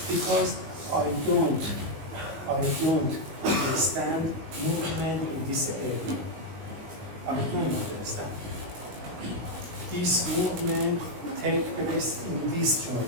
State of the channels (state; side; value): late; left; 19 ms